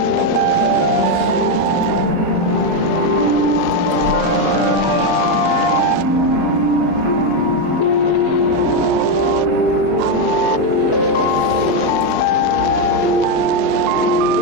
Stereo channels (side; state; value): left; late; 4.7 ms